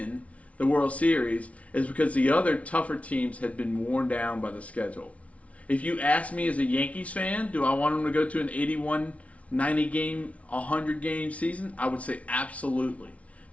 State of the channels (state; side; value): late; right; 0.065 ms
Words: the World Series is because the other tougher teams had been worn down by the schedule. If you ask me as a Yankees fan, do I want them to go to an 81, 90 game, 100 game season? I would say absolutely.